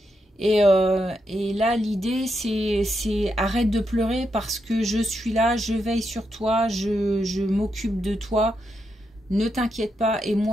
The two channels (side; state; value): both; normal; correlation 0.83